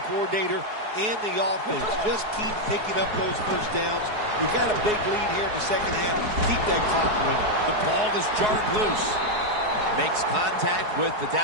coordinator, and the offense. Just keep picking up those first downs. You got a big lead here in the second half. Keep that clock running. The ball is jarred loose. Makes contact with the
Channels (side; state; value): left; late; 4.7 ms